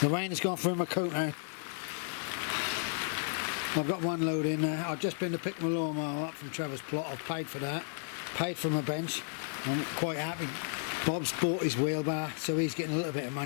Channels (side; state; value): right; silent; digital silence